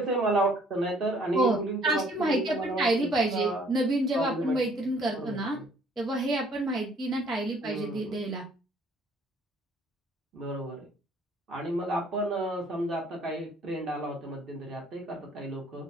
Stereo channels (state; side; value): normal; both; correlation 0.60